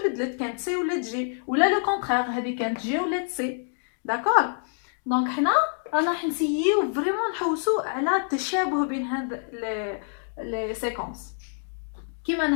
كانت سي ولات جي، ولا لو كونترير هذه كانت جي ولات سي. داكور دونك حنا راح نسيو فريمون نحوسو على التشابه بين هاد لي سيكونس. كيما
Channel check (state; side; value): silent; right; digital silence